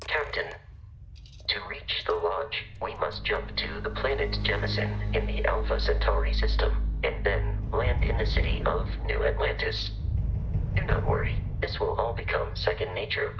Captain, to reach the Lodge, we must jump to the planet Jemison in the Alpha Centauri system, and then land in the city of New Atlantis. Do not worry, this will all become second nature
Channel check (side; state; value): both; identical; correlation 1.00